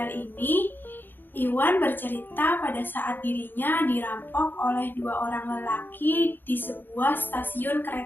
ini, Iwan bercerita pada saat dirinya dirampok oleh dua orang lelaki di sebuah stasiun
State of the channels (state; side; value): late; right; 0.095 ms